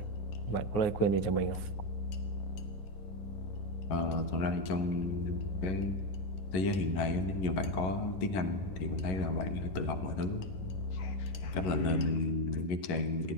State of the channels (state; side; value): late; right; 11 ms